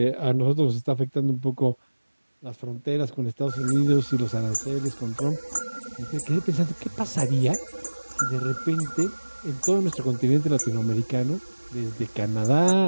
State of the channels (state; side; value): inverted; both; correlation -1.00